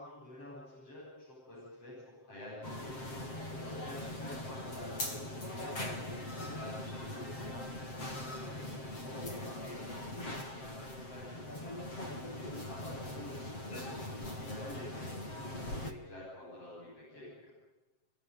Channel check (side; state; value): right; late; 7.6 ms